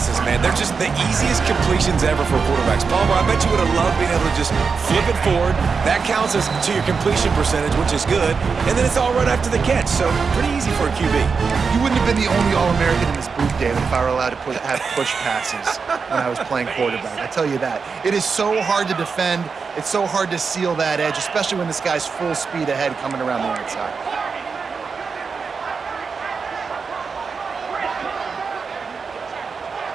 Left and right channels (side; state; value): left; quieter; 5.3 dB